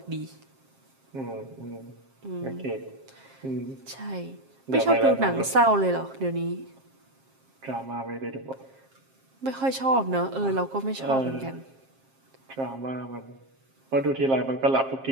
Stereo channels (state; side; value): late; left; 7.5 ms